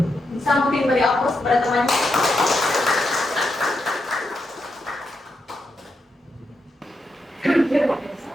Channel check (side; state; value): both; normal; correlation 0.84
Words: Bisa mungkin beri aplaus kepada temannya.